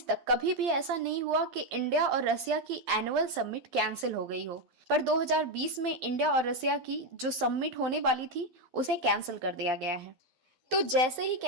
तक कभी भी ऐसा नहीं हुआ कि इंडिया और रसिया की एनुअल समिट कैंसिल हो गई हो, पर 2020 में इंडिया और रसिया की जो समिट होने वाली थी उसे कैंसिल कर दिया गया है। तो जैसे ही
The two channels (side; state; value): left; late; 12 ms